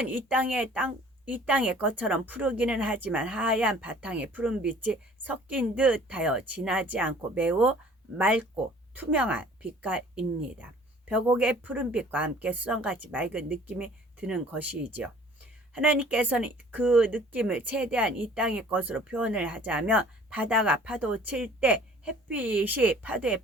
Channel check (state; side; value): normal; both; correlation 0.51